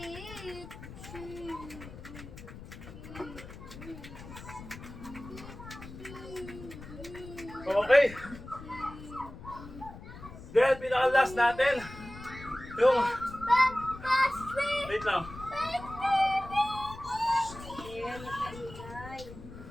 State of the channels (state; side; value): noise; left; rumble, 14 dB below the sound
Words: Okay. Then, pinaka-last natin. Yung, wait lang.